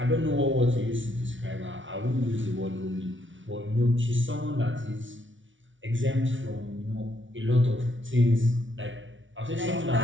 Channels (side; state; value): left; late; 0.56 ms